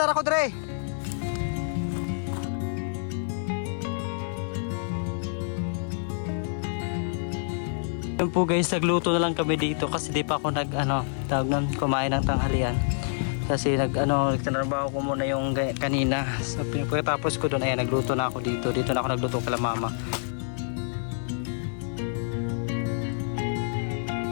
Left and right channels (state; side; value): silent; right; digital silence